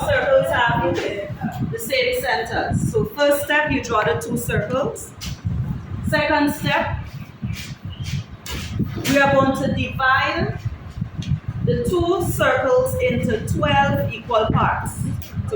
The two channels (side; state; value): both; identical; correlation 1.00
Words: have the same centers. So first step, you draw the 2 circles. Second step, we are going to divide the 2 circles into 12 equal parts.